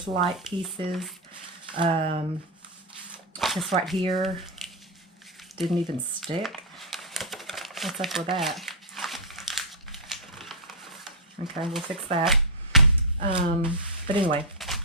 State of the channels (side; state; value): both; normal; correlation -0.05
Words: light pieces. This right here didn't even stick. What's up with that? Okay, we'll fix that. But anyway,